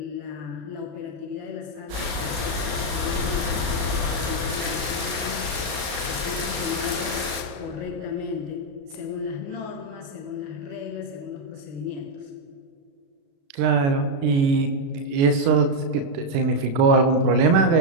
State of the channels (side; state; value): left; late; 36 ms